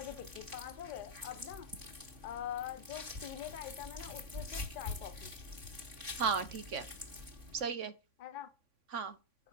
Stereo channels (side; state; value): left; late; 3.5 ms